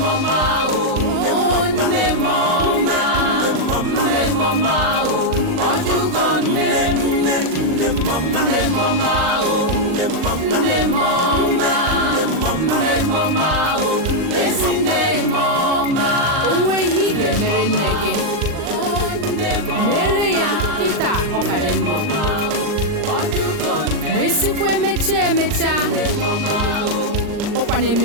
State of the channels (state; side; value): late; left; 39 ms